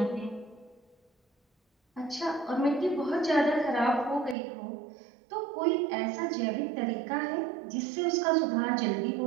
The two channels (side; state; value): left; drops out; at 4.4 s